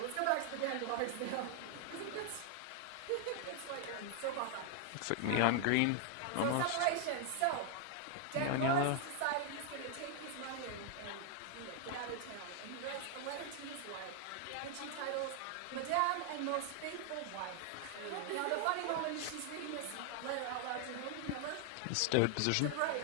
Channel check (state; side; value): different; both; correlation 0.00